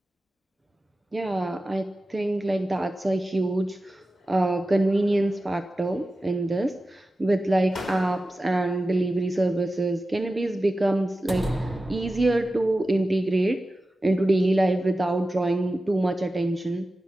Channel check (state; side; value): normal; both; correlation 0.94